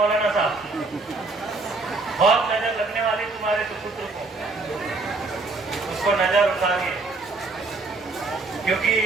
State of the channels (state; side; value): quieter; left; 3.6 dB